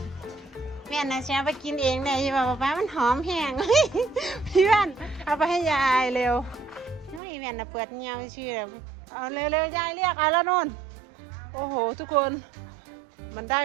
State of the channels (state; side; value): drops out; left; at 7.2 s